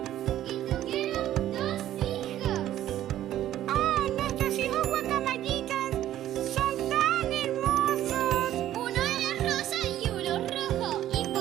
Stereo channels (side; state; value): left; quieter; 12.6 dB